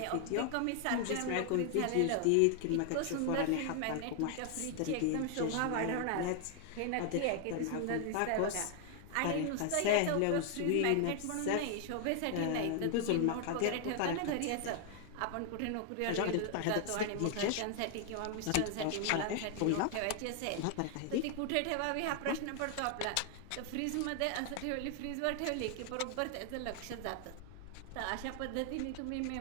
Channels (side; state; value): both; different; correlation 0.00